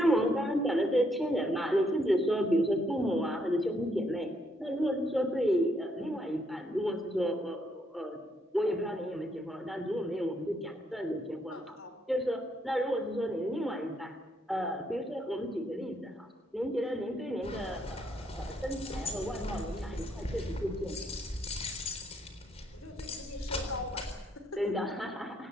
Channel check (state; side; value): normal; both; correlation 0.73